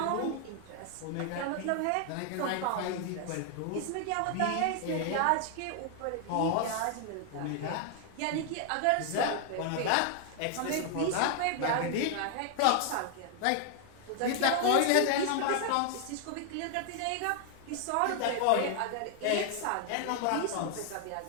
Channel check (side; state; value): both; different; correlation 0.00